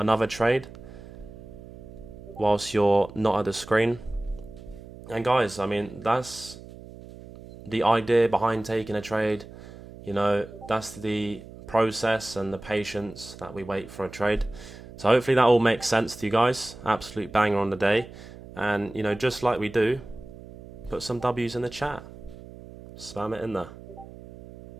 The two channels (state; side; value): noise; right; hum, 16 dB below the sound